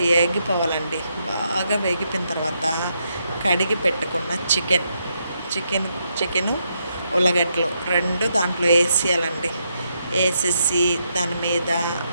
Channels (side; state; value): both; inverted; correlation -0.79